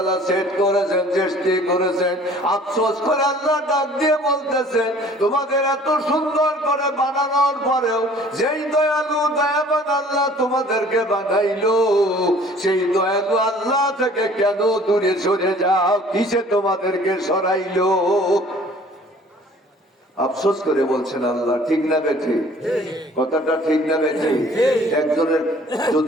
সেট করেছেন, সৃষ্টি করেছেন। আফসোস করে আল্লাহ ডাক দিয়ে বলতেছেন, তোমাদের এত সুন্দর করে বানানোর পরেও যেই দয়ালু দয়াবান আল্লাহ তোমাদেরকে বানাইলো, সেই দয়ালু আল্লাহ থেকে কেন দূরে সরে যাও? কিসে তোমাদেরকে সরাইলো? আফসোস করে বলছেন আল্লাহ, ঠিক না বেঠি? কথাটা ঠিক না বেঠি? একজনের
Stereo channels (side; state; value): both; normal; correlation 0.52